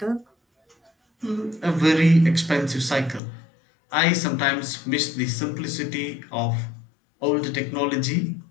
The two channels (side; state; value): right; drops out; at 3.2 s